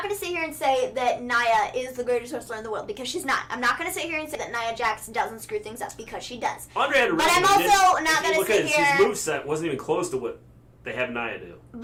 gonna sit here and say that Nia is the greatest wrestler in the world because she's not. I'm not gonna sit here and say that Nia Jax doesn't screw things up because she does. Andre had a but I'm also not gonna sit here. His moveset wasn't even close to what they have Nia do.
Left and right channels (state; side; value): identical; both; correlation 1.00